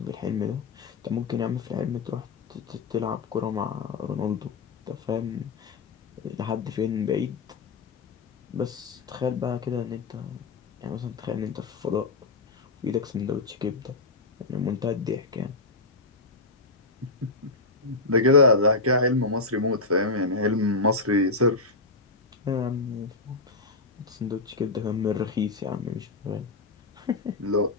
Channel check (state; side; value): quieter; right; 3.5 dB